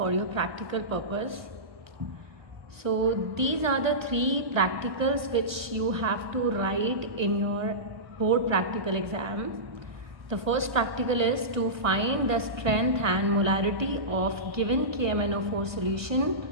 your practical purpose. So these are the three practicals which you have to write in your board practical exam. The first practical is to find the strength and molarity of given KMnO4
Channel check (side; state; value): left; late; 1.0 ms